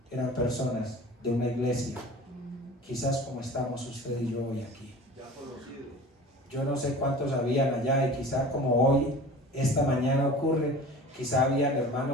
eran personas de una iglesia, quizás como estamos usted y yo hoy aquí. Yo no sé cuántos habían allá, y quizá como hoy, esta mañana ocurre, quizá habían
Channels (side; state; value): both; normal; correlation 0.40